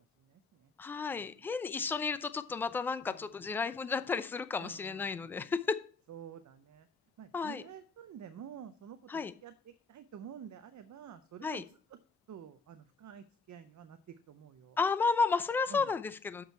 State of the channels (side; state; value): right; quieter; 4.1 dB